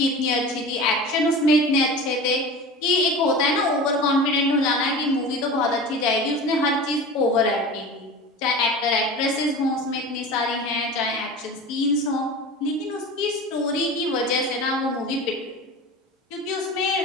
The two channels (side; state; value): both; normal; correlation 0.34